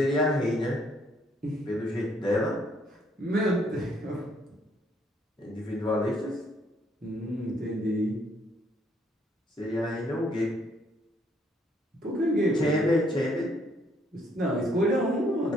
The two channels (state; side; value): normal; both; correlation 0.67